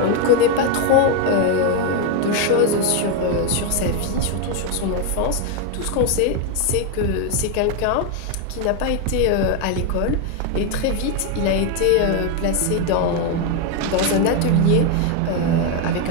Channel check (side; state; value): both; different; correlation 0.02